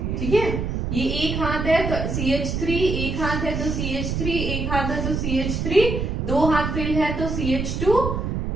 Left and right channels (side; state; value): right; noise; rumble, 2 dB below the sound